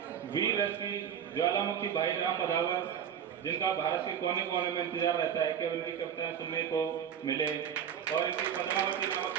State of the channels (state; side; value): quieter; left; 8.4 dB